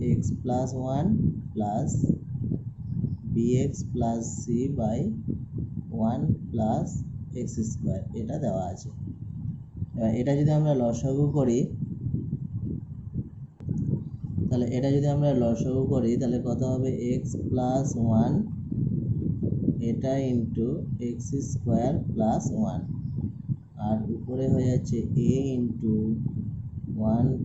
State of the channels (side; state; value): both; identical; correlation 1.00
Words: x plus 1 plus bx plus C by 1 plus x square, এটা দেওয়া আছে। এবার এটা যদি আমরা লসাগু করি, তাহলে এটা যদি আমরা লসাগু করি তাহলে কত হবে এক্স প্লাস 1 এটা ইন্টু এক্স স্কোয়ার প্লাস 1, আর উপরে হয়ে যাচ্ছে a into 1